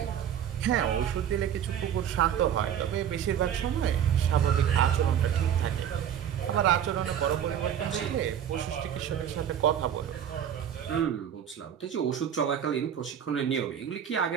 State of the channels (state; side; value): quieter; left; 9.3 dB